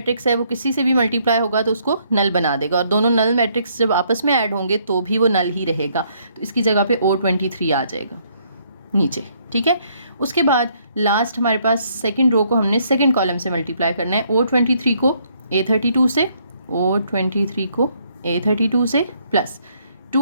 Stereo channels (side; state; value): both; inverted; correlation -0.69